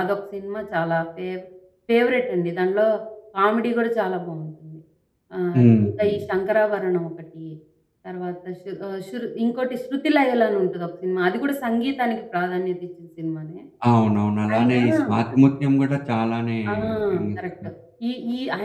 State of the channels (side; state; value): both; identical; correlation 1.00